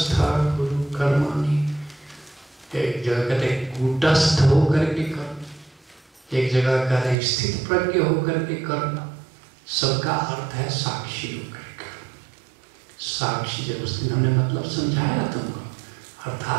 गुरु कर्माणि, एक जगह कहते कूटस्थ होकर के कर्म, एक जगह कहते स्थित प्रज्ञ होकर के कर्म, सबका अर्थ है साक्षी होकर कर्म। साक्षी जब उस दिन हमने मतलब समझाया तुमको,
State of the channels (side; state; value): left; drops out; at 7.2 s